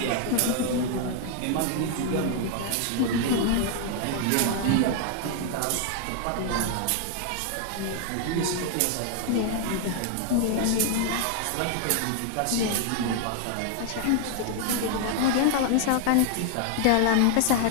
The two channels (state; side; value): different; both; correlation 0.00